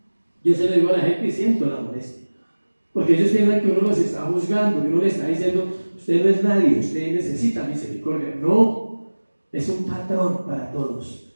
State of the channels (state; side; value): inverted; both; correlation -1.00